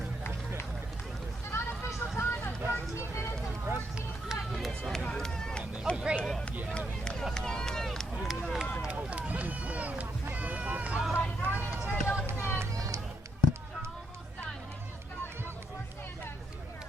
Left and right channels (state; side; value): normal; both; correlation 0.79